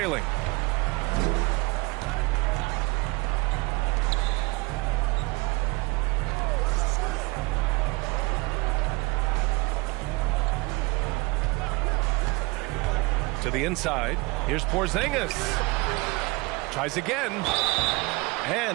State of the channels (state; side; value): quieter; left; 25.2 dB